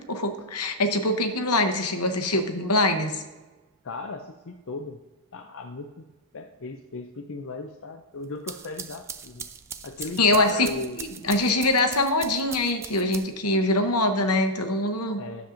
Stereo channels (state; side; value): normal; both; correlation -0.05